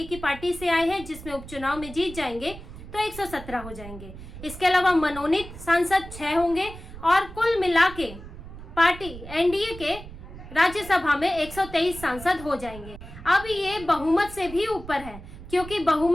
की पार्टी से आए हैं जिसमें उपचुनाव में जीत जाएंगे तो 117 हो जाएंगे। इसके अलावा मनोनीत सांसद 6 होंगे, और कुल मिला के पार्टी एनडीए के राज्यसभा में 123 सांसद हो जाएंगे। अब ये बहुमत से भी ऊपर है, क्योंकि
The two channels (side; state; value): right; noise; rumble, 14 dB below the sound